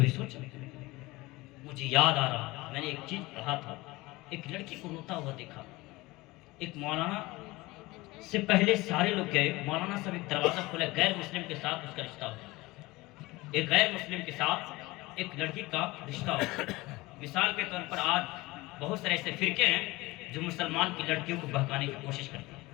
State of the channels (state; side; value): quieter; right; 21.1 dB